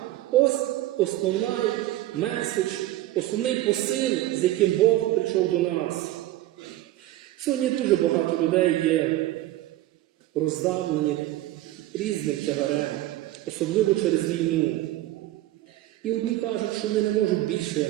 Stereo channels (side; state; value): left; quieter; 15.4 dB